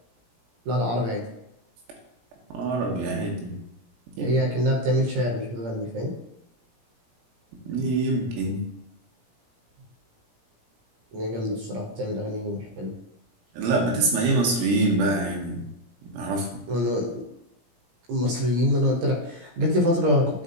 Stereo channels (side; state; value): left; late; 17 ms